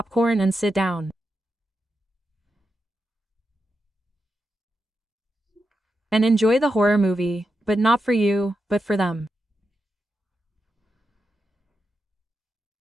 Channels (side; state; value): both; normal; correlation 0.87